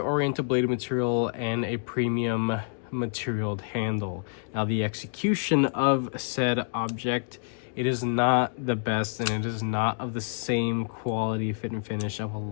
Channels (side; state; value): right; silent; 60 dB below the other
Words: bladed material and a premium materialed handle. Now the execution of said object, it is not the best, and it is not of the same quality, fit, and finish of a